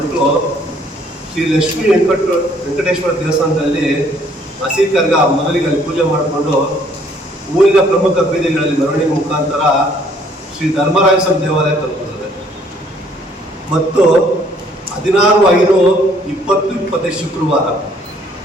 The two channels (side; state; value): both; normal; correlation 0.62